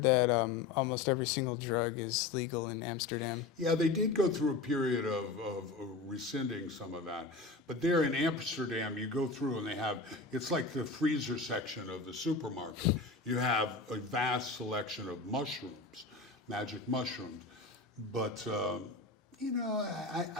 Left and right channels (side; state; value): right; quieter; 3.9 dB